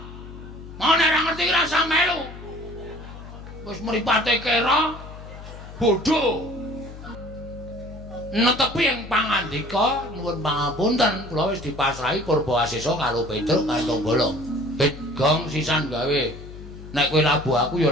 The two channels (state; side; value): noise; left; hum, 14 dB below the sound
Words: Mau nek ora ngerti ora usah melu. Wis mripate kera bodho. Netepi ing pangandika nuwun pangapunten kula wis dipasrahi Purbawasesa karo Petruk kantong bolong. Bet gong sisan gawe. Nek kowe labuh aku ya